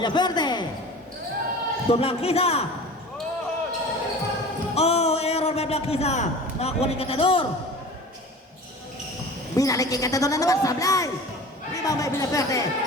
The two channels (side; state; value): both; normal; correlation 0.38